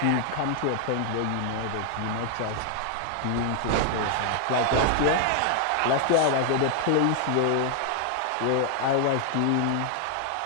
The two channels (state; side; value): different; both; correlation 0.00